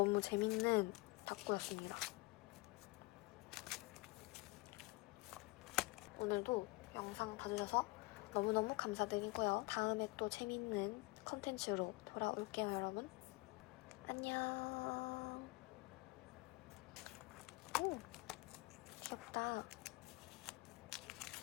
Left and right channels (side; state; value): right; quieter; 23.5 dB